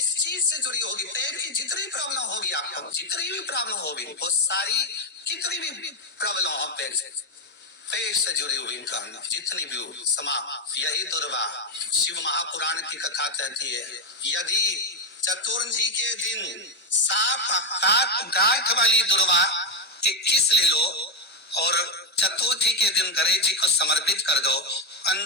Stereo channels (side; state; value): both; normal; correlation 0.06